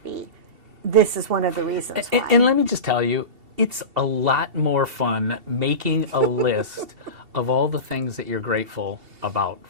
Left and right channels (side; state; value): left; late; 2.7 ms